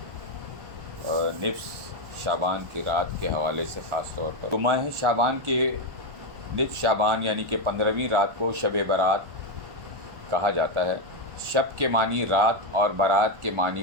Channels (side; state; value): left; late; 1.4 ms